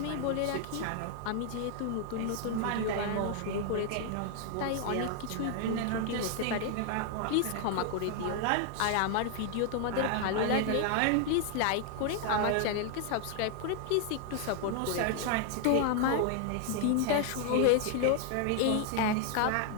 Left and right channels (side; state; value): both; different; correlation 0.00